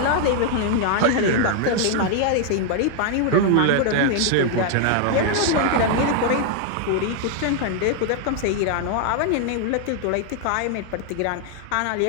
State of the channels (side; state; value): both; different; correlation 0.00